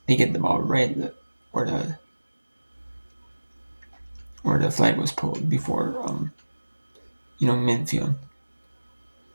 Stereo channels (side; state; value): both; inverted; correlation -1.00